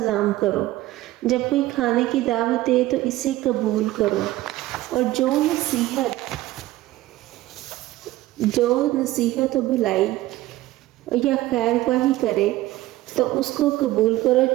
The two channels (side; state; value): left; quieter; 16.5 dB